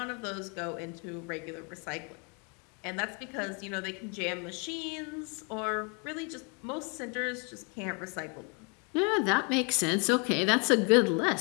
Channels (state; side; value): quieter; right; 34.9 dB